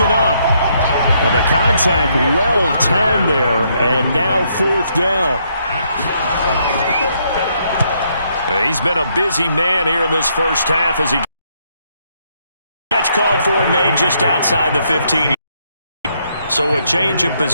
up. The contact well timed there, and now 4th down. He's been a busy man here in this first half as he catch called for and made just outside the 15. So a change of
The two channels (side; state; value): both; inverted; correlation -0.73